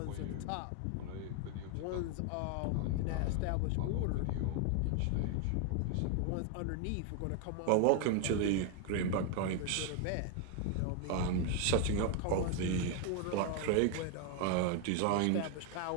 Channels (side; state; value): both; different; correlation 0.01